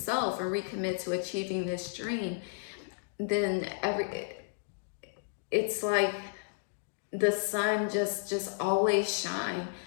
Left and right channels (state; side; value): silent; right; digital silence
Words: and recommit to achieving this dream, then it's like the sun just always shine.